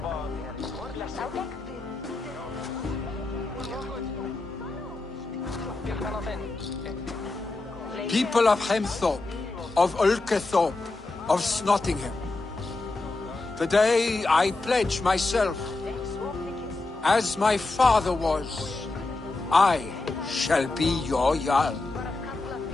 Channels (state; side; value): quieter; right; 3.3 dB